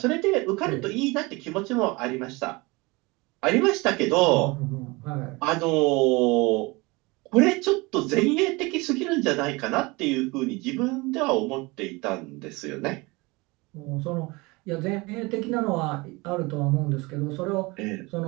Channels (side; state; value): left; quieter; 24.6 dB